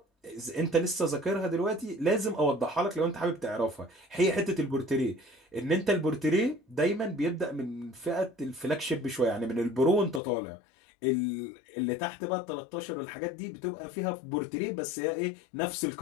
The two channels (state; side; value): drops out; right; at 10.2 s